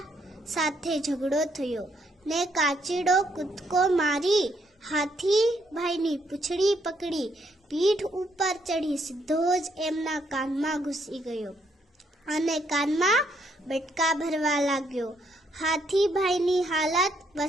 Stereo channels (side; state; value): both; normal; correlation 0.73